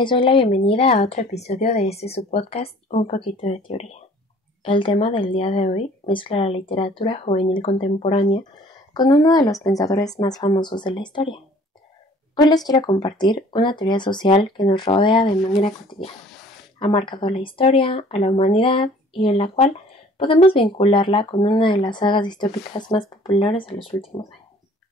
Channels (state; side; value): normal; both; correlation 0.52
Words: doy la bienvenida a otro episodio de su podcast Un poquito de teoría. El tema del día de hoy mezcla la literatura juvenil contemporánea con uno de los pensadores más famosos de la historia. Hoy les quiero compartir una teoría social que nos rodea de manera cotidiana. Ha marcado la historia, a la humanidad y en la cual podemos vincularla con una de las sagas distópicas más populares de los últimos años.